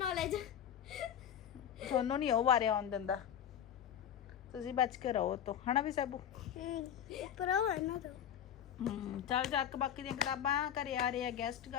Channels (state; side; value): quieter; right; 9.5 dB